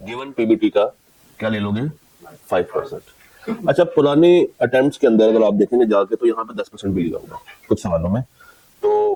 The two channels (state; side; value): identical; both; correlation 1.00